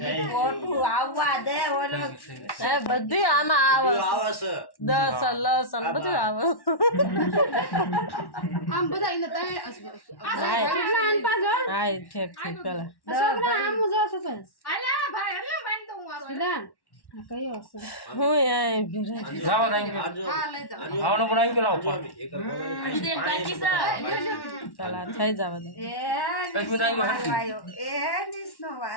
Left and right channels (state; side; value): late; right; 1.1 ms